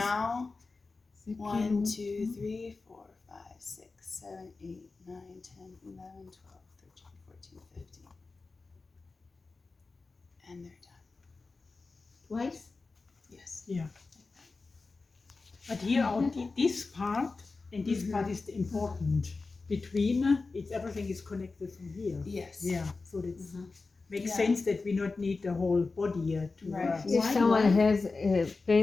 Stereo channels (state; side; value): quieter; right; 3.9 dB